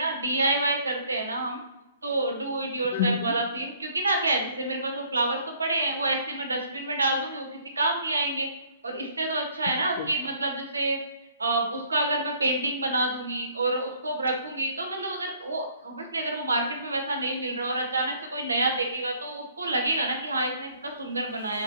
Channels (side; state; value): both; inverted; correlation -0.61